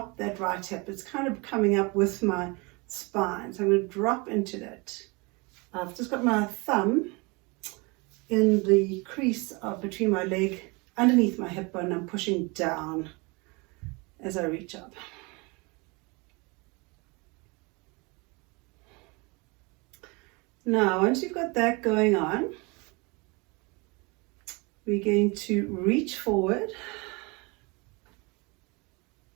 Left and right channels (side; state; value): left; quieter; 27.8 dB